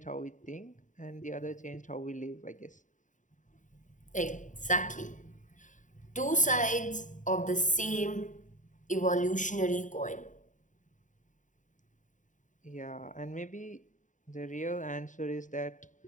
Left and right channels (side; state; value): right; late; 0.37 ms